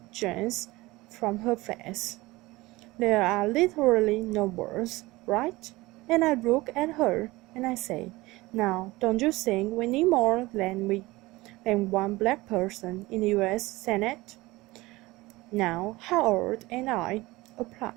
drains from her face. There are literally no words, right? And I look at her and I say, now, don't you think we need more than one black person in the U.S. Senate? Now, Howard and I, a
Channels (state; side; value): quieter; left; 20.5 dB